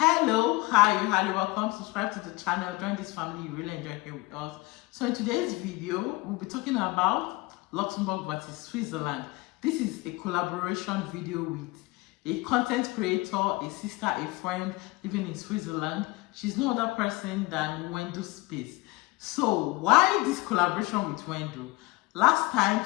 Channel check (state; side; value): quieter; right; 22.5 dB